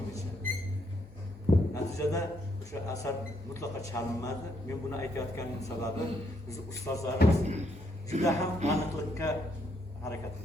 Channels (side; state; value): both; normal; correlation 0.74